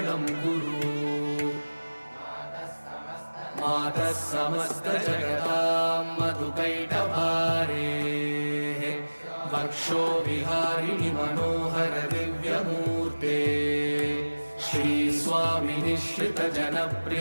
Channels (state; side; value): inverted; both; correlation -1.00